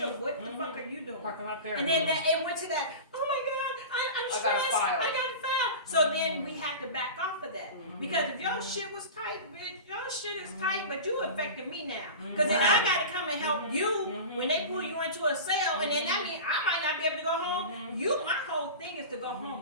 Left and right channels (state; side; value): inverted; both; correlation -0.31